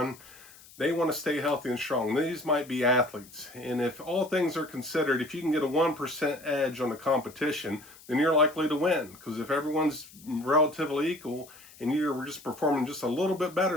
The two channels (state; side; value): noise; left; hiss, 22 dB below the sound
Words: they want to stay healthy and strong. These might be athletes. And if all things are considered, if you can get a 1% edge on the competition, then you're likely to win. Because if everyone's relatively equal and you're just performing just a little bit